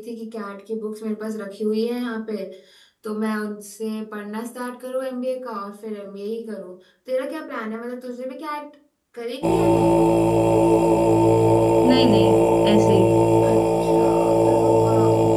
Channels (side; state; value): both; identical; correlation 1.00